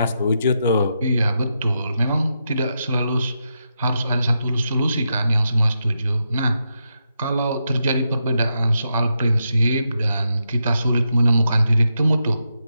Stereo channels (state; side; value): inverted; both; correlation -0.85